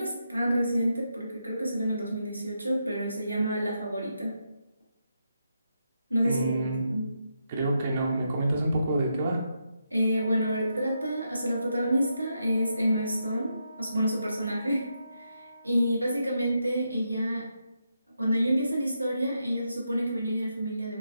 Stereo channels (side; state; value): both; inverted; correlation -0.83